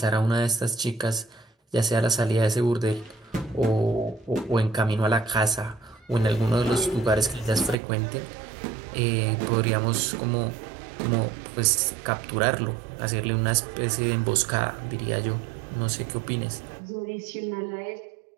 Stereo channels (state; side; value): drops out; left; at 7.8 s